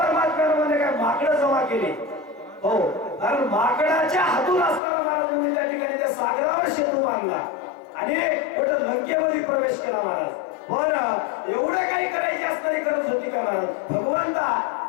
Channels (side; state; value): right; drops out; at 4.8 s